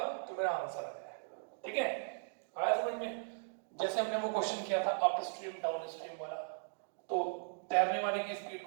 मेरा आंसर आ जाएगा। ठीक है, आया समझ में। जैसे हमने वो क्वेश्चन किया था अप स्ट्रीम डाउन स्ट्रीम वाला, तो तैरने वाले की स्पीड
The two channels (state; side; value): silent; left; digital silence